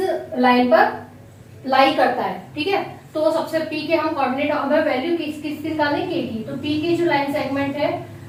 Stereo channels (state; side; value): identical; both; correlation 1.00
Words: लाइन पर लाई करता है। ठीक है, तो सबसे P के हम कोऑर्डिनेट, हमें वैल्यू किसकी निकालने K की। तो P की जो लाइन सेगमेंट है